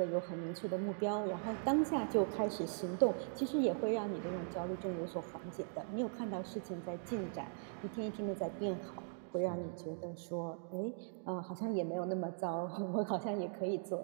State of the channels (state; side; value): silent; left; digital silence